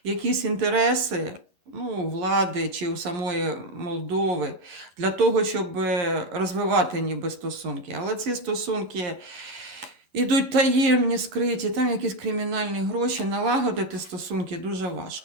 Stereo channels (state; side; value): late; left; 11 ms